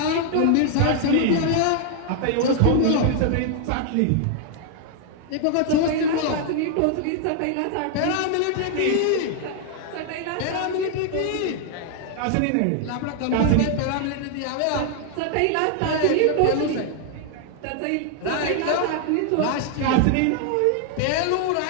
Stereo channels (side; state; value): both; different; correlation 0.00